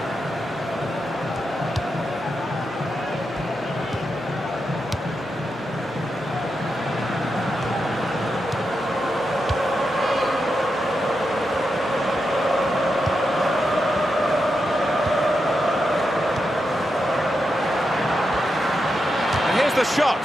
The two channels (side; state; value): both; normal; correlation 0.86